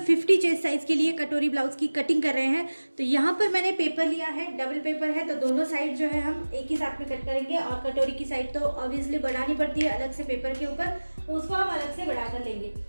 50 चेस्ट साइज के लिए कटोरी ब्लाउज की कटिंग कर रहे हैं। तो यहाँ पर मैंने पेपर लिया है, डबल पेपर है, तो दोनों साइड जो है हम एक ही साथ में कट करेंगे। और कटोरी की साइड तो ऑब्वियसली बढ़ानी पड़ती है अलग से पेपर के ऊपर, तो उसको हम अलग से बढ़ा कर लेंगे।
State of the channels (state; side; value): inverted; both; correlation -1.00